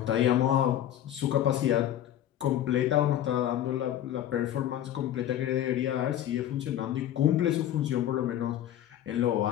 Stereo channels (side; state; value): right; quieter; 11.5 dB